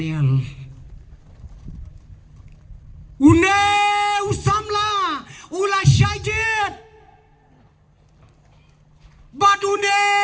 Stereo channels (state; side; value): identical; both; correlation 1.00